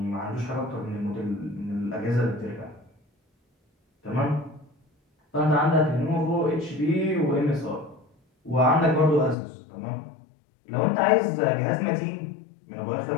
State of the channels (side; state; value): right; drops out; at 9.3 s